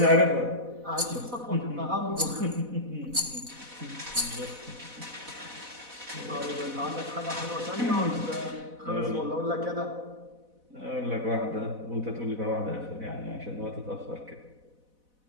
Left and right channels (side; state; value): left; late; 4.1 ms